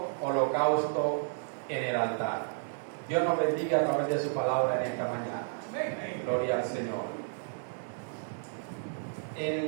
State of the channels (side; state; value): left; silent; digital silence